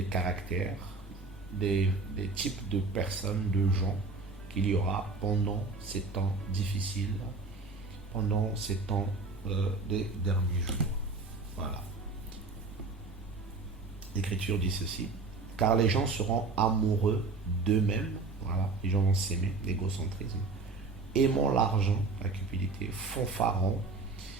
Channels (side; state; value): left; quieter; 3.9 dB